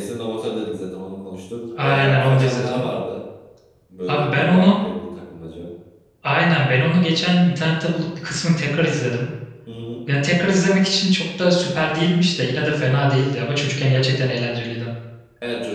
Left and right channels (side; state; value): both; identical; correlation 1.00